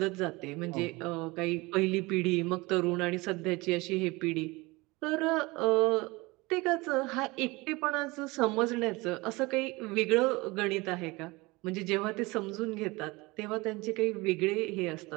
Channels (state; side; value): quieter; left; 23.3 dB